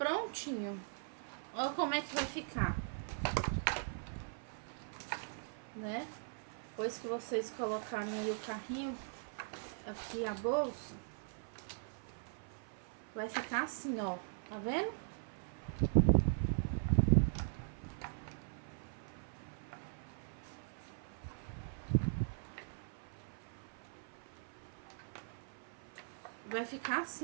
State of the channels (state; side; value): silent; left; 51 dB below the other